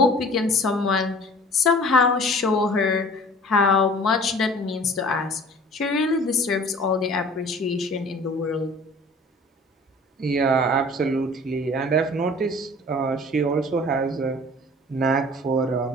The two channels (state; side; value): normal; both; correlation 0.46